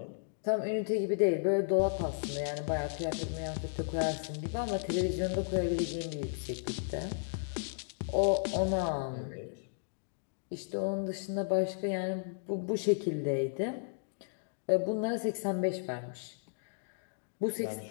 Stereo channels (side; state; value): right; silent; digital silence